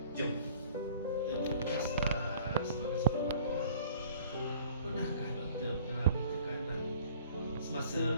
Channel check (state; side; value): inverted; both; correlation -0.52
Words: Jom. Tugas sebagai seorang pakar, pernahkah doktor mengalami tekanan semasa